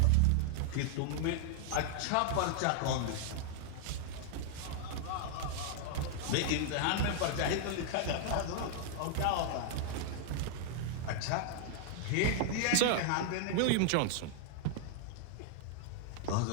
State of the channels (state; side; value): different; both; correlation 0.00